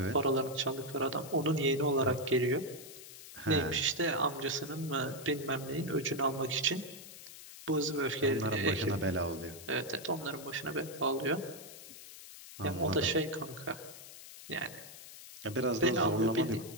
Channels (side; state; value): left; noise; hiss, 15 dB below the sound